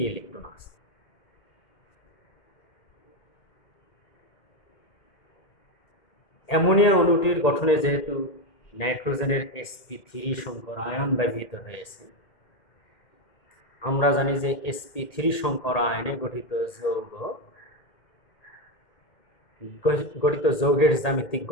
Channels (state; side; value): late; right; 2.1 ms